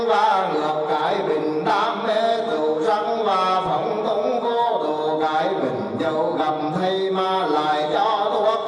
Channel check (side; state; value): both; identical; correlation 1.00